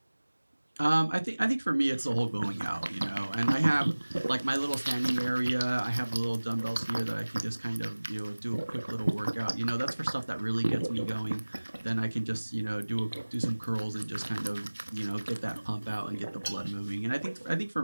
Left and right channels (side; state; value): both; inverted; correlation -1.00